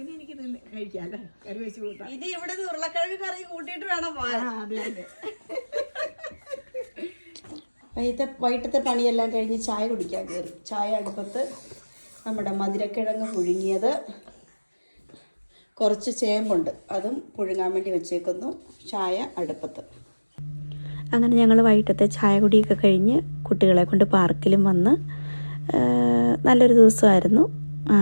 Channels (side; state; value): both; inverted; correlation -1.00